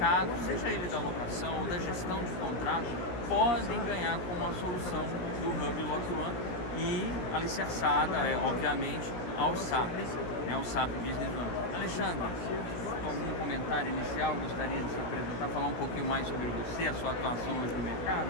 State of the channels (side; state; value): right; late; 17 ms